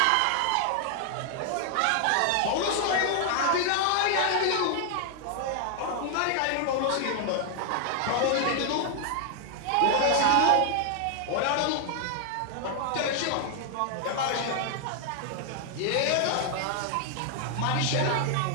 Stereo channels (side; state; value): both; different; correlation 0.00